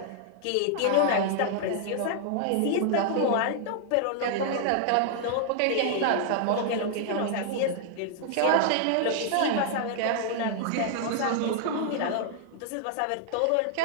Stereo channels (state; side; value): different; both; correlation -0.01